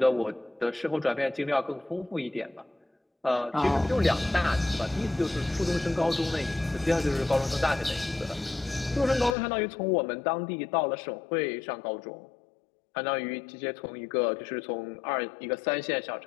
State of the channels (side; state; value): right; drops out; at 9.3 s